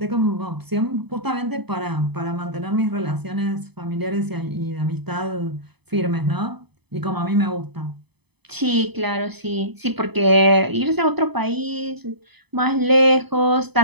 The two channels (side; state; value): left; late; 0.98 ms